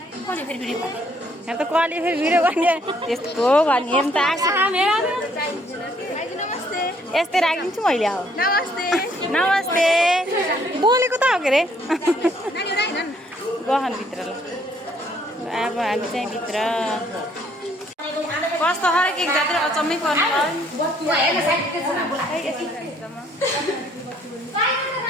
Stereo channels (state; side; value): normal; both; correlation 0.65